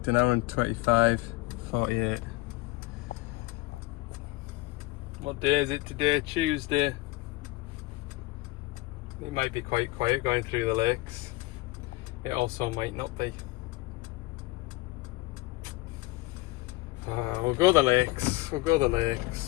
1 hour and 25, 48. What day is it today? Tuesday. It might be quite quiet going through the lakes. It also might not be. We'll go the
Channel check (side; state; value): right; quieter; 20.8 dB